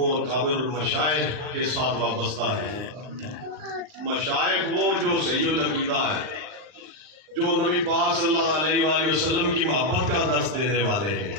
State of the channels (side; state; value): left; late; 39 ms